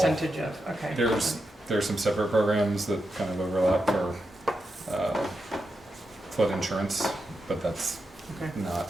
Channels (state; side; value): normal; both; correlation 0.86